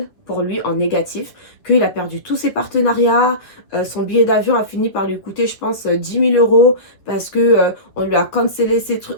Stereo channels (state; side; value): late; right; 9.8 ms